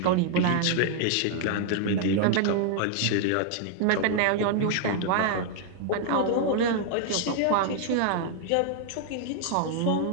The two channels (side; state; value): both; different; correlation 0.00